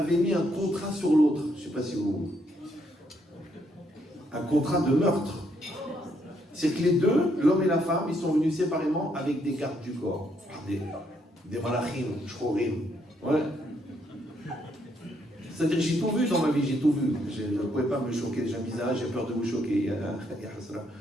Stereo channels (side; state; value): both; normal; correlation 0.73